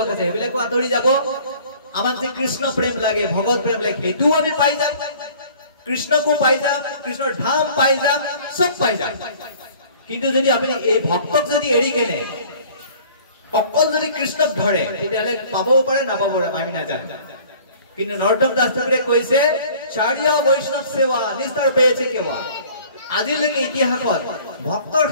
আছে সেইবিলাকো আঁতৰি যাব আমাক যে কৃষ্ণ প্ৰেম লাগে ভগৱত প্ৰেম লাগে সেইটো আমি পাই যাম কৃষ্ণকো পাই যাম কৃষ্ণৰ ধাম পাই যাম সব পাই যাম কিন্তু যদি আপুনি এই ভক্তক যদি এৰি কেনে অকল যদি কৃষ্ণক ধৰে তেতিয়াহলে পাবও পাৰে নাপাব পাৰে আমি নাজানো কিন্তু নৰোত্তম দাস ঠাকুৰে কৈছে চাৰিয়া বৈষ্ণৱ সেৱা নিস্তাৰ পেয়েছে কেৱা আজিলৈকে ইতিহাসত ভক্তৰ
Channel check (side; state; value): both; inverted; correlation -0.50